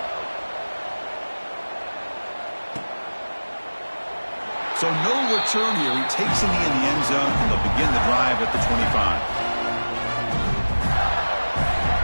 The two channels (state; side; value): inverted; both; correlation -1.00